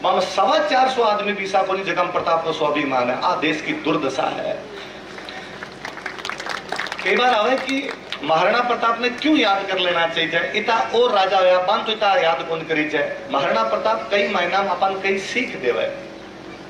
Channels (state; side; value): identical; both; correlation 1.00